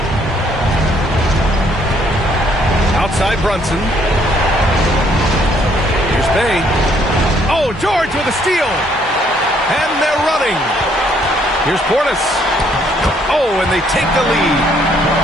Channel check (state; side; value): normal; both; correlation 0.67